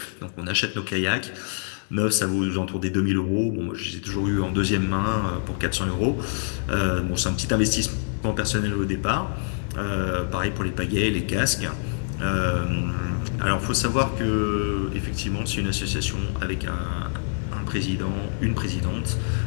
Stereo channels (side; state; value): right; silent; digital silence